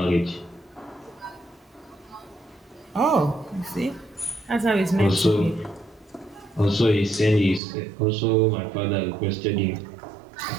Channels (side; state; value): left; drops out; at 7.6 s